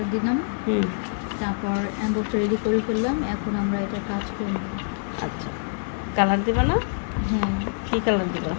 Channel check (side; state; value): right; silent; 59 dB below the other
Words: দিলাম, তারপর অ্যাম্বসটা রেডি করে ফেললাম। এখন আমরা এটা কাজ করব। আচ্ছা, কালার দিবা না? হ্যাঁ। কি কালার দিবা?